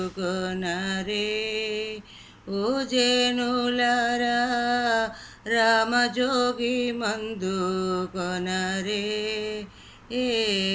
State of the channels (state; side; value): identical; both; correlation 1.00